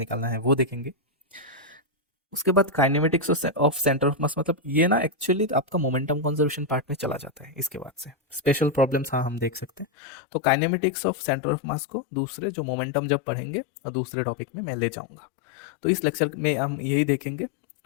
है वो देखेंगे। उसके बाद काइनेमेटिक्स ऑफ सेंटर ऑफ मास, मतलब ये ना एक्चुअली आपका मोमेंटम कंजर्वेशन पार्ट में चला जाता है। इसके बाद से स्पेशल प्रॉब्लम्स हाँ हम देख सकते हैं। तो काइनेमेटिक्स ऑफ सेंटर ऑफ मास को दूसरे जो मोमेंटम जब पढ़ेंगे और दूसरे टॉपिक में मैं ले जाऊंगा। तो इस लेक्चर में हम यही देखेंगे।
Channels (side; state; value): right; drops out; at 9.9 s